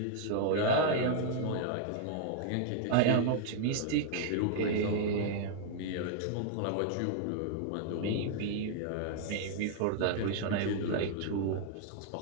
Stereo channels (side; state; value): both; different; correlation -0.01